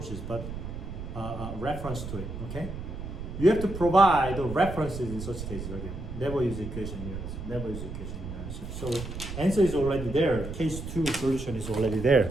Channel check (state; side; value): noise; right; rumble, 8 dB below the sound